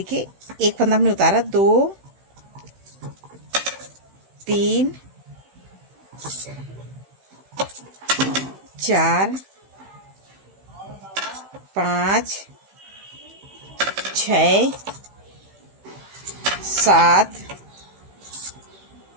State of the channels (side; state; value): left; late; 15 ms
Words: एक फंदा हमने उतारा, 2 3 4 5 6 7